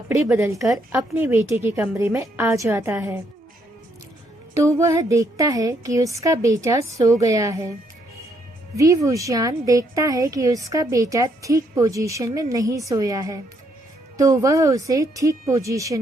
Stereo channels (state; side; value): normal; both; correlation 0.73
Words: बदलकर अपने बेटे के कमरे में आ जाता है तो वह देखता है कि उसका बेटा सो गया है। वी वुशियान देखता है कि उसका बेटा ठीक पोजीशन में नहीं सोया है तो वह उसे ठीक पोजीशन